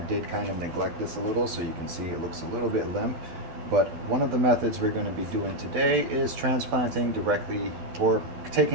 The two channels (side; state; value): left; late; 12 ms